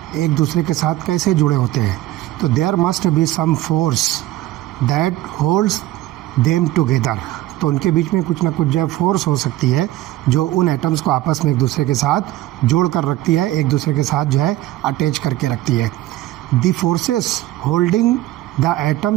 एक दूसरे के साथ कैसे जुड़े होते हैं. तो there must be some force that holds them together. तो उनके बीच में कुछ ना कुछ जो है फोर्स हो सकती है जो उन एटम्स को आपस में एक दूसरे के साथ जोड़ कर रखती है, एक दूसरे के साथ जो है अटैच करके रखती है. The forces holding the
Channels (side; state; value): left; quieter; 15.4 dB